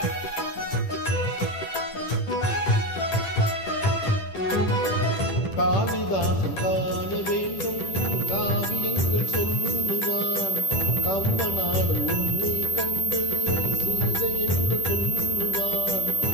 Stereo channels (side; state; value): right; late; 10 ms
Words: காளிதாசன் காண வேண்டும் காவியங்கள் சொல்லுவான் கம்பனாலும் உன்னை கண்டு சீதை என்று சொல்லுவான்